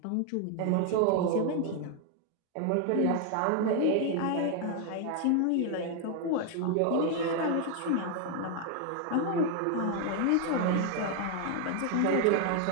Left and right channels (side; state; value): both; different; correlation 0.00